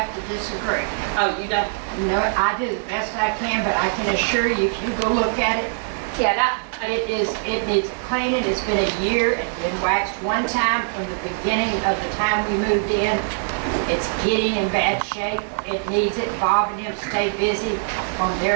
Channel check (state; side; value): silent; left; 64 dB below the other